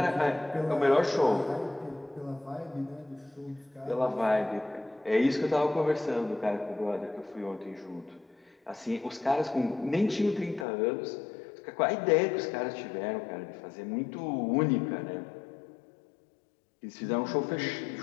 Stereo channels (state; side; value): drops out; right; at 10.7 s